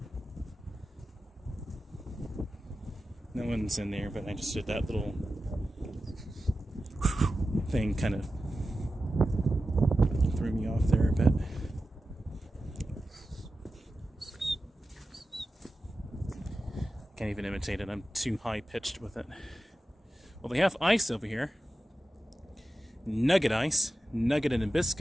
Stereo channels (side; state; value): both; normal; correlation 0.93